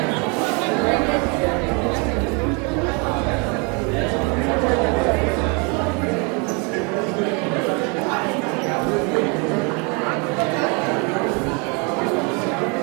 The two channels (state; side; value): quieter; left; 32.6 dB